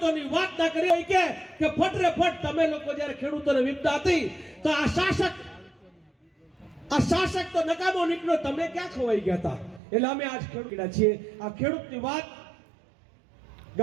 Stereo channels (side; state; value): left; drops out; at 9.8 s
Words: વાત ના કરીએ કે ફટરે ફટ તમે લોકો જ્યારે ખેડૂતોને વિપદા હતી તો આ શાસક તો નકામો નીકળ્યો, તમે ક્યાં ખોવાઈ ગયા હતા. એટલે અમે આજ ખેડૂત છીએ. આ ખેડૂતની વાત